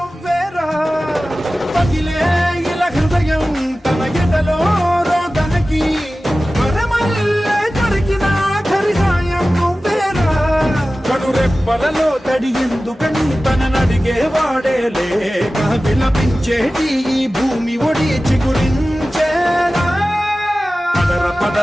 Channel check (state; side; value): normal; both; correlation 0.96